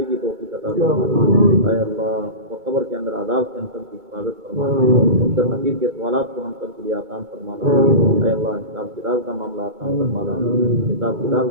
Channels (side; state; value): left; late; 2.2 ms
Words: کی توفیق عطا فرما اے اللہ اور قبر کے اندر عذاب سے ہم سب کی حفاظت فرما منکر نکیر کے سوالات کو ہم سب کے لیے آسان فرمانا اے اللہ حساب کتاب کا معاملہ آسان فرمانا حساب